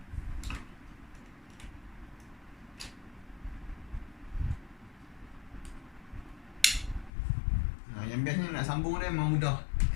Yang biasanya nak sambung dia memang mudah.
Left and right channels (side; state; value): right; drops out; at 7.1 s